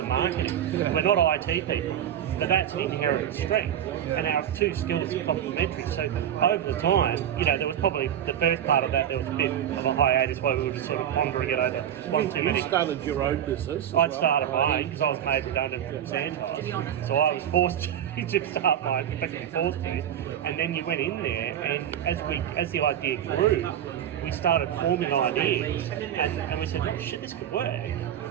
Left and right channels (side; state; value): left; quieter; 10.2 dB